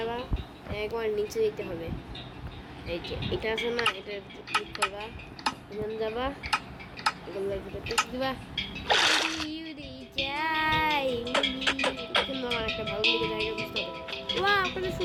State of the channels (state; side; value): identical; both; correlation 1.00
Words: একবার নিচে যেতে হবে, এই যে এটা আছে না, এটা ক্লিক করবা, এখানে যাবা, এগুলো টিক দিবা। যাই কিন্তু আমার একটা ভালো দিকে জায়গা বুঝতে হবে। ওয়া আপনাদের